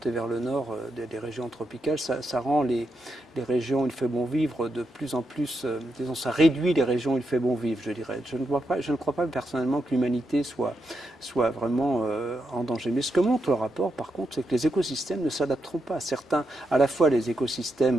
vers le nord des régions tropicales, ça rend les régions où il fait bon vivre de plus en plus, disons, ça réduit les régions où il fait bon vivre, je dirais. Je ne crois pas personnellement que l'humanité soit vraiment en danger. Mais ce que montre le rapport, par contre, c'est que les écosystèmes ne s'adapteront pas à certains. À la fois les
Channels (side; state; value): both; normal; correlation 0.84